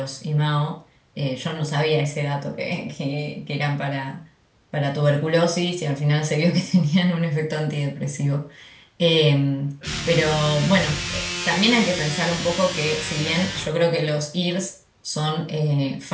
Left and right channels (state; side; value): identical; both; correlation 1.00